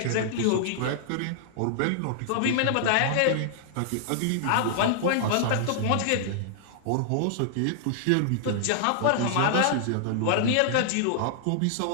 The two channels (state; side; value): different; both; correlation -0.01